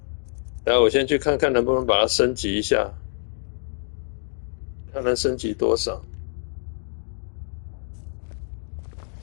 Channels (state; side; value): silent; right; digital silence